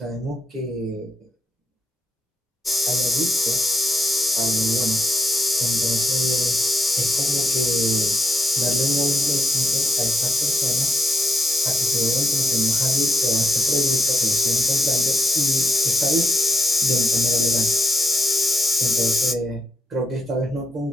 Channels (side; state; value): both; normal; correlation 0.84